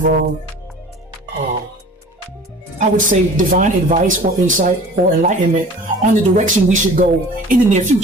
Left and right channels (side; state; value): both; normal; correlation 0.44